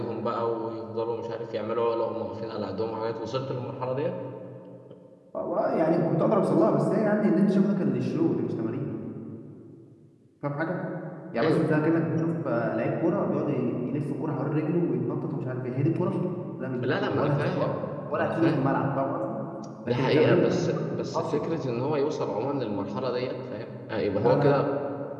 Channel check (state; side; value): identical; both; correlation 1.00